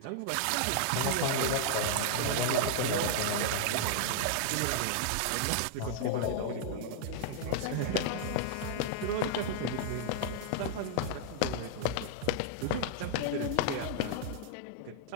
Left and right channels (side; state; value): both; different; correlation -0.01